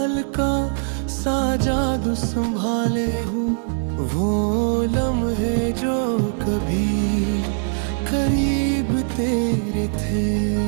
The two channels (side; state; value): left; silent; digital silence